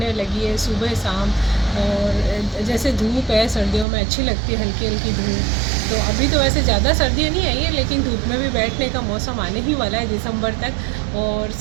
लगी है सुबह शाम। और जैसे धूप है सर्दियों में अच्छी लगती है, हल्की हल्की धूप। तो अभी तो वैसे ज़्यादा सर्दियाँ नहीं आई है, लेकिन धूप में भी बैठने का मौसम आने ही वाला है दिसंबर तक। और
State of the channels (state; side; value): drops out; left; at 3.9 s